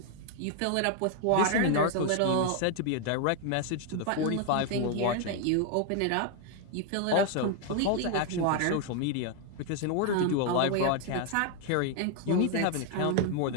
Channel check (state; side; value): different; both; correlation 0.00